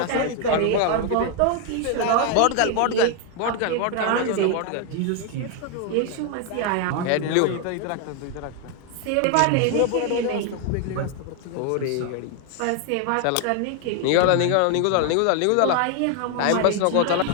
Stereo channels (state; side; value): different; both; correlation 0.01